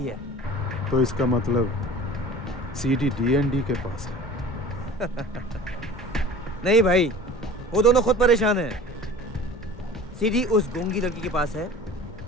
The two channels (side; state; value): both; normal; correlation 0.42